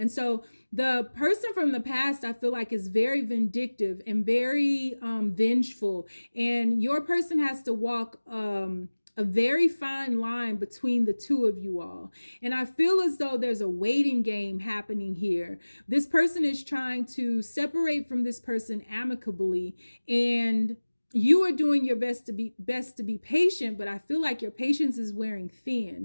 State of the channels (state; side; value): inverted; both; correlation -1.00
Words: so the person from the past, I feel like, is very vindictive and very vengeful. And your person has to walk a very fine line between the 2 of you all. And I feel as though there's a waiting game happening here. This person is trying to separate from this person amicably, and you are doing your best to be patient, but I feel like your patience is wearing